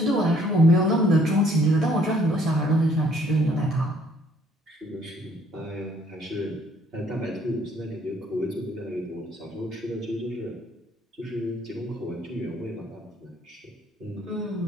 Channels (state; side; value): normal; both; correlation 0.62